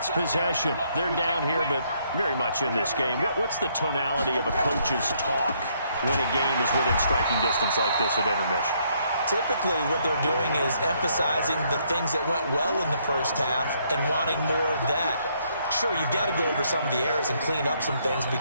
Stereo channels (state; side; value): inverted; both; correlation -0.71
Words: possession. They're down here, but very much in this game. What's the tonality of a coach's talk when a game is within striking distance like this at intermission? Typically, what they're doing is emphasizing the things that went well in the first half and wanting more of that. Sure, you've got to go over some of the errors and clean up some things